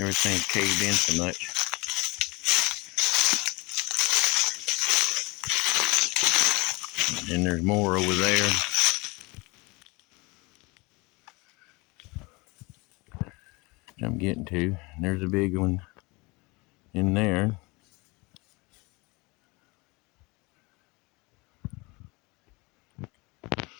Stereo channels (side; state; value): right; quieter; 25.9 dB